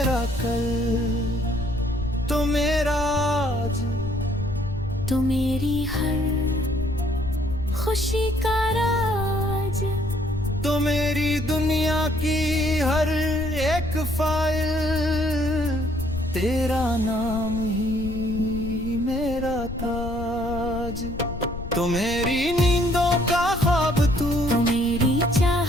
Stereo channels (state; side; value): noise; left; rumble, 9 dB below the sound